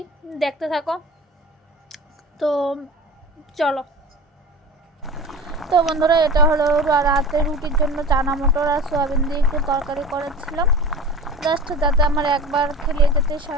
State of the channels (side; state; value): both; normal; correlation 0.34